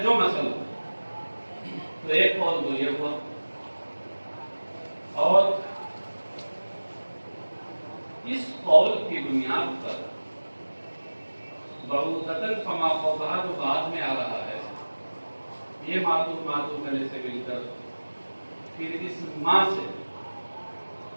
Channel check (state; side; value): inverted; both; correlation -1.00